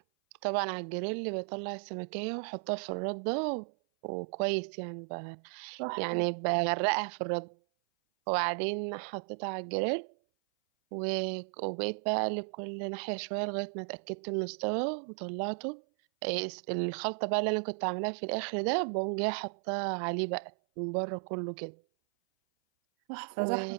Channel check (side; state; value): left; silent; 55 dB below the other